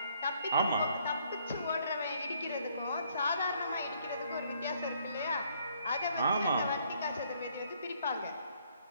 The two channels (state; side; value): inverted; both; correlation -0.67